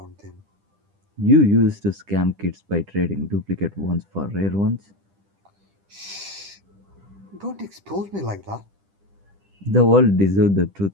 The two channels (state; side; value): late; left; 10 ms